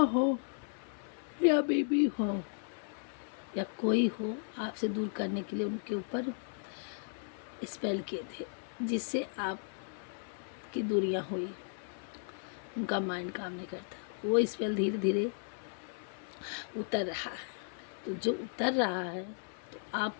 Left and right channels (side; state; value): right; silent; 54 dB below the other